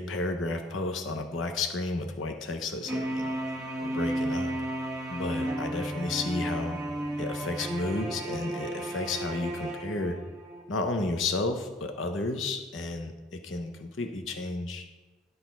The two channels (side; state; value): both; normal; correlation 0.59